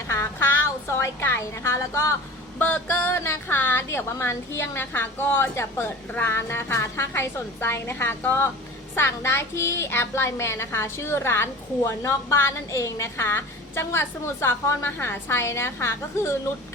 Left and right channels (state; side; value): normal; both; correlation 0.37